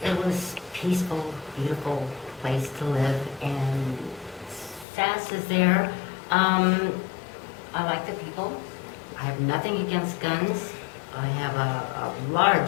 it was peaceful, beautiful place to live, and SASS is there. I like the people. I have nothing against guns. I have a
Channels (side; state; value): right; drops out; at 4.9 s